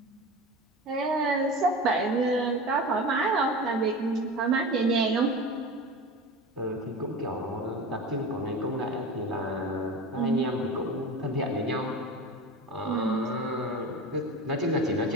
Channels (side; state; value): both; normal; correlation 0.31